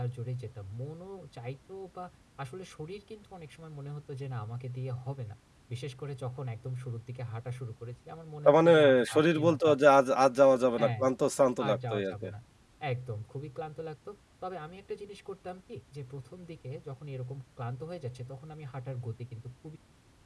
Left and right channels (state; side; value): identical; both; correlation 1.00